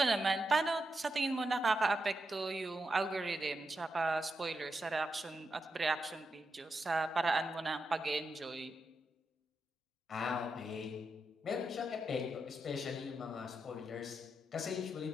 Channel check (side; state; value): both; normal; correlation 0.86